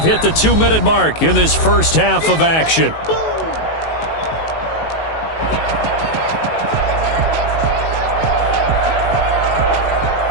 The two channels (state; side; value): late; right; 19 ms